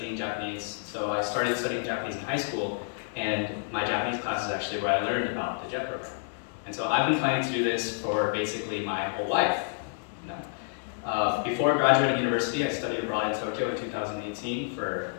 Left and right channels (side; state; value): right; silent; digital silence